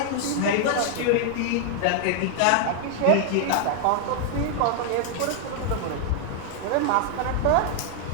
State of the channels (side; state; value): both; different; correlation 0.00